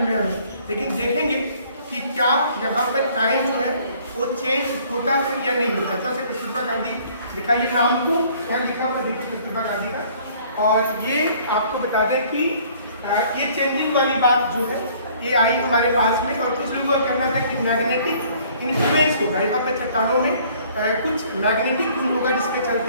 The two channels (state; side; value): inverted; both; correlation -0.57